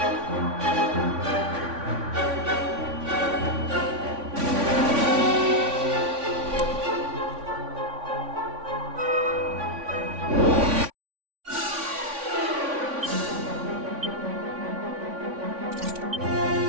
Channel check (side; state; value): left; late; 3.5 ms